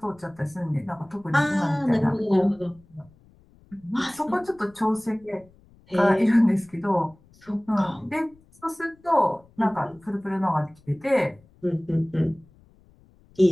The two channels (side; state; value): left; noise; rumble, 29 dB below the sound